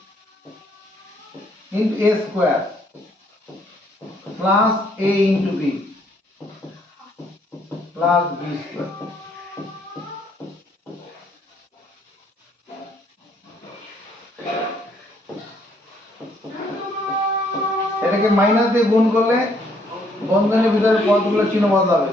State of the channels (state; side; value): normal; both; correlation 0.67